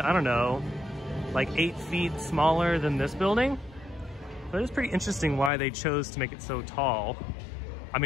I don't know, like 8 feet smaller than this building. But it's pretty interesting why they chose to make it so tall. I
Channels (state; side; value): drops out; right; at 5.5 s